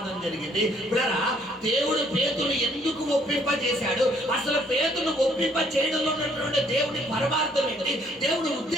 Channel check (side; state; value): both; normal; correlation 0.64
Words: జరిగింది. బ్రదరా, దేవుడు పేతురు ఎందుకు ఒప్పింపజేశాడు, అసలు పేతురు ఒప్పింప చేయడంలో ఉన్నటువంటి దేవుడి పరమార్థం ఏంటి, దేవుడి